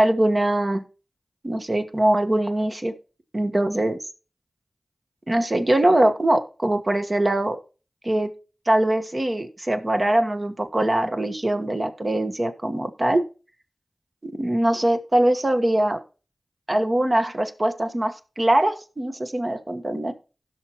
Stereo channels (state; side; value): normal; both; correlation 0.98